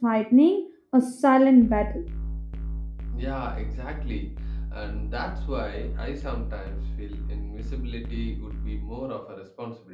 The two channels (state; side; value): identical; both; correlation 1.00